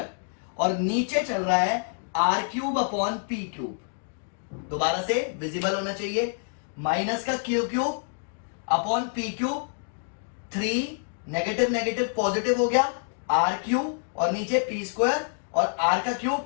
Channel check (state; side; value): silent; right; digital silence